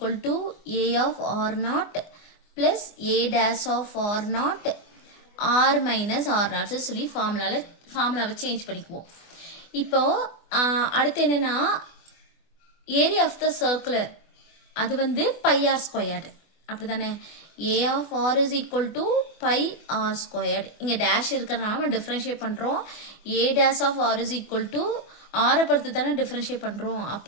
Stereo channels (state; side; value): late; right; 24 ms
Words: to a of r naught plus a dash of r naught r minus r naught சொல்லி ஃபார்முலாவை change பண்ணிக்குவோம். இப்போ அடுத்து என்னன்னா ஏரியா ஆஃப் த சர்க்குலர் அது வந்து பை ஆர் ஸ்கொயர்டு, அப்படி தானே. A of R is equal to pi R squared. இங்கே டேஷ் இருக்கிறதுனால நம்ம டிஃப்ரென்ஷியேட் பண்ணுறோம். A dash of R is equal to ஆரை பொறுத்து தானே டிஃப்ரென்ஷியேட் பண்ணுறோம்.